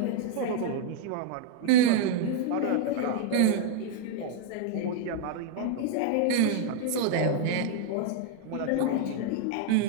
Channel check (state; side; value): different; both; correlation 0.00